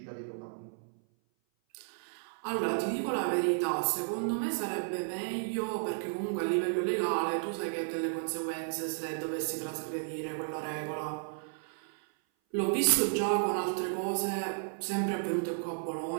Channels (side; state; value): left; silent; 56 dB below the other